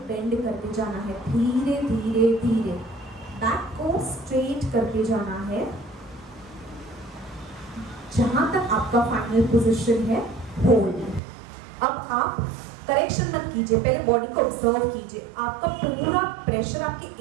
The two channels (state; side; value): drops out; left; at 11.2 s